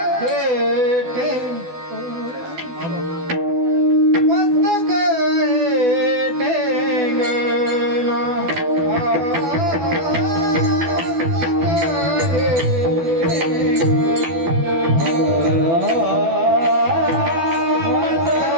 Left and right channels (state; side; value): late; left; 12 ms